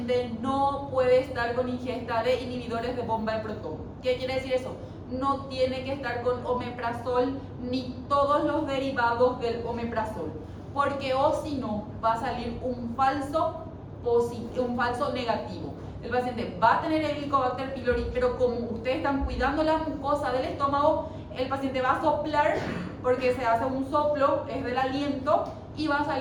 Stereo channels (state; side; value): identical; both; correlation 1.00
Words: no puede estar con ingesta de inhibidores de bomba de protón. ¿Qué quiere decir eso? No tiene que estar con omeprazol ni todos los derivados del omeprazol, porque o si no va a salir un falso negativo. El paciente va a tener el Helicobacter pylori, pero como ustedes están cuidando la mucosa del estómago, el paciente va a soplar porque se hace un soplo, es del aliento, y va a